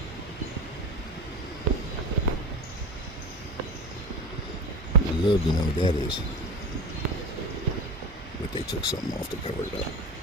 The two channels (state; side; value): normal; both; correlation 0.29